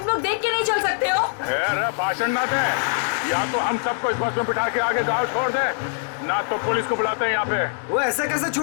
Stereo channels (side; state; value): right; silent; digital silence